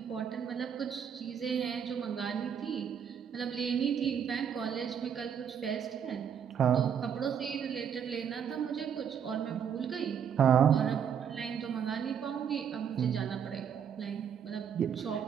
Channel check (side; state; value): left; quieter; 7.9 dB